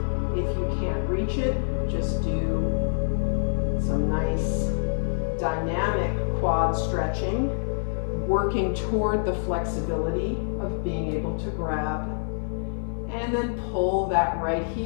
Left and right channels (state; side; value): silent; right; 55 dB below the other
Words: If you can't reach it, just do some nice dynamic quad stretching, working toward the flexibility of being able to grab. And then pull that right